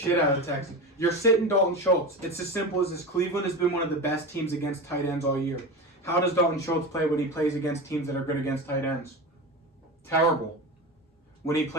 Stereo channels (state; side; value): normal; both; correlation 0.25